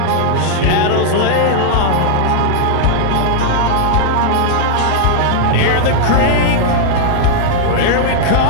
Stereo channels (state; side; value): different; both; correlation -0.01